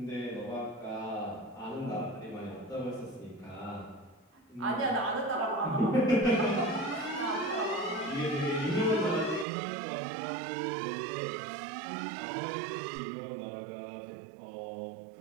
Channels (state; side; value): drops out; left; at 9.5 s